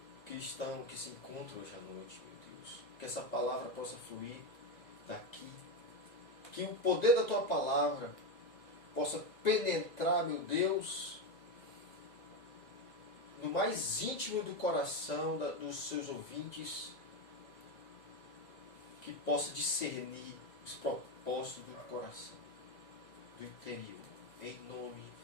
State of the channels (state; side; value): late; right; 1.9 ms